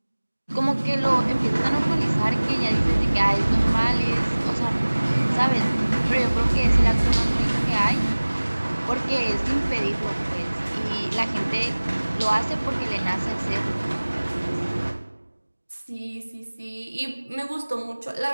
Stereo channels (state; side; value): inverted; both; correlation -1.00